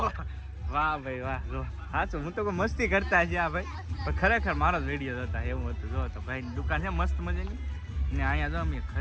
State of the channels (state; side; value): identical; both; correlation 1.00